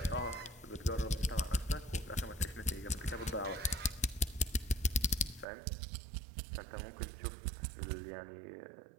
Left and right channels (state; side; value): drops out; left; at 5.5 s